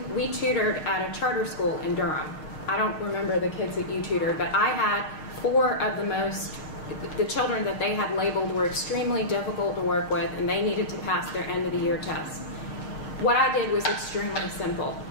tutored at a charter school in Durham. I don't remember the kids that you tutored, but I had 4 of the children that they had labeled were extremely difficult to work with, and they needed to pass their end of the year test. What I did was extremely simple.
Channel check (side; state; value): right; late; 6.5 ms